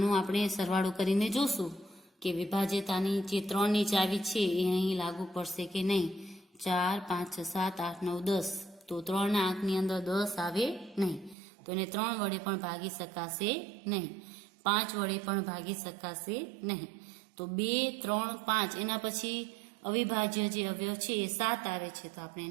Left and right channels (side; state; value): left; drops out; at 11.4 s